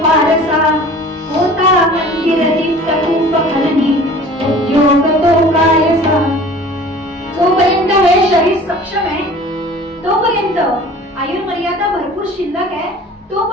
होता मंदिर दीप्त रूप फलनी, उद्योग तो कायसा. जोपर्यंत हे शरीर सक्षम आहे तोपर्यंत, आयुर्मर्यादा भरपूर शिल्लक आहे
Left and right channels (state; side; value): normal; both; correlation 0.45